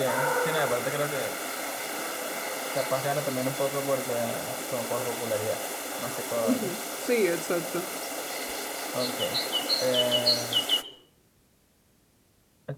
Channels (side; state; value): both; identical; correlation 1.00